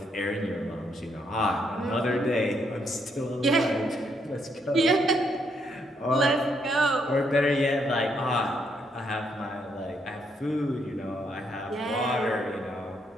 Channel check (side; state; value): both; normal; correlation 0.74